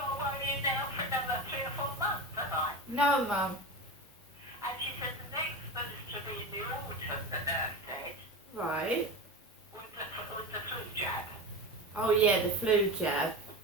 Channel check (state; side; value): normal; both; correlation 0.25